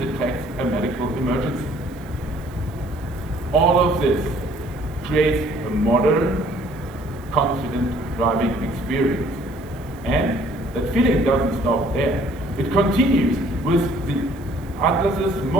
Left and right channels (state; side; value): noise; right; hiss, 26 dB below the sound